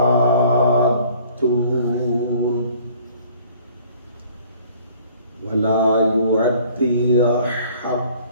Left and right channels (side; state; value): both; inverted; correlation -0.55